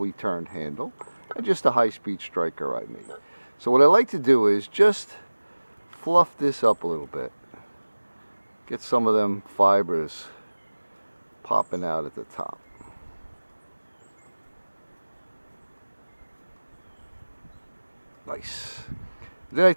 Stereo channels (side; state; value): both; inverted; correlation -1.00